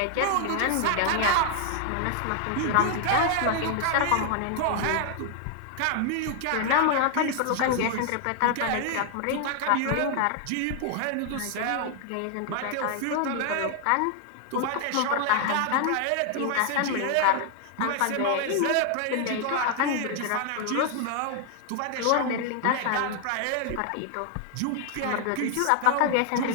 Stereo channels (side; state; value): both; different; correlation 0.00